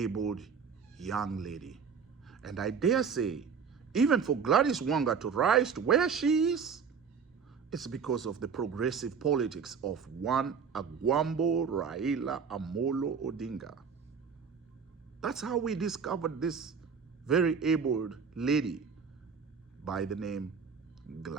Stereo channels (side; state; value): left; quieter; 6.2 dB